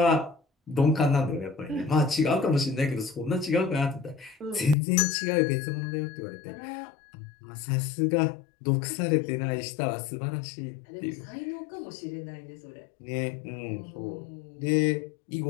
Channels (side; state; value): right; drops out; at 4.8 s